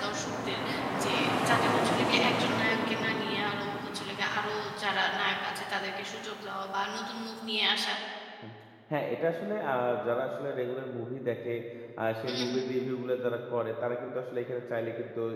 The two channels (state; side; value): identical; both; correlation 1.00